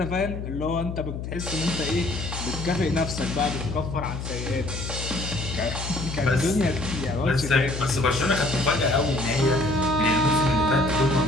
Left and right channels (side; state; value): left; noise; hum, 6 dB below the sound